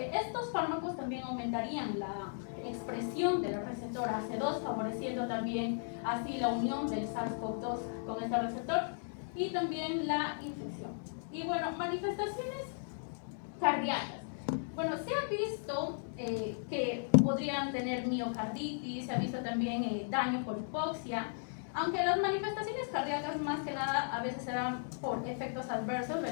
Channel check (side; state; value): right; silent; digital silence